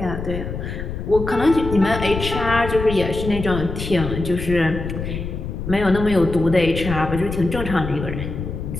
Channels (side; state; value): left; noise; rumble, 6 dB below the sound